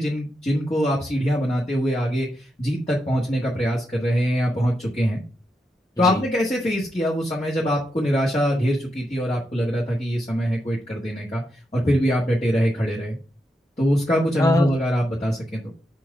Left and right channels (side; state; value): both; normal; correlation 0.85